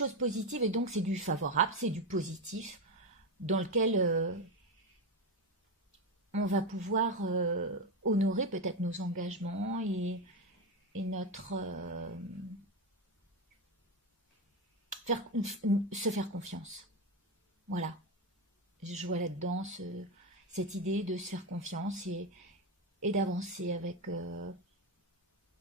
positives et donc c'est du favorable, c'est du positif dans lequel on va pouvoir honorer peut-être nos engagements et notre se faire confiance. Voilà, je vois là-dedans cette idée de se faire confiance et d'avancer avec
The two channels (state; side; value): normal; both; correlation 0.12